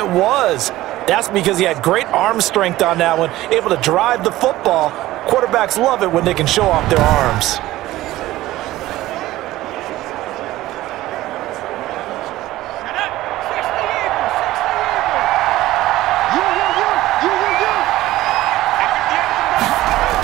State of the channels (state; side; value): quieter; left; 16.3 dB